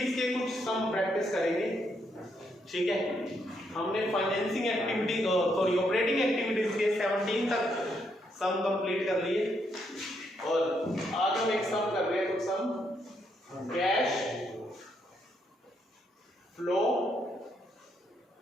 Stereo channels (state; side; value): normal; both; correlation 0.76